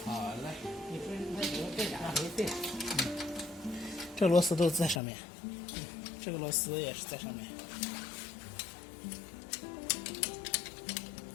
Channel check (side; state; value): right; drops out; at 5.0 s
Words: 好嘞，这螺丝都在上面，这个螺丝也是在上面。